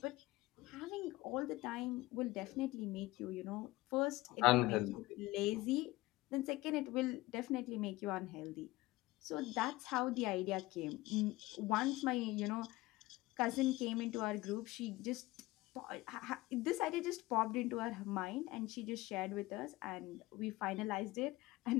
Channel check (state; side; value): quieter; right; 19.2 dB